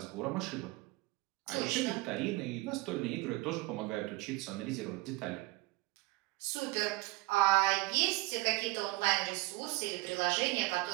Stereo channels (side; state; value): left; quieter; 22.0 dB